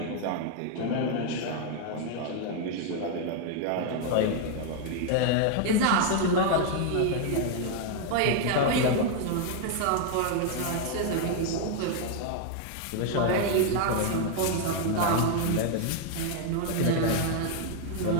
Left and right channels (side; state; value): both; different; correlation 0.00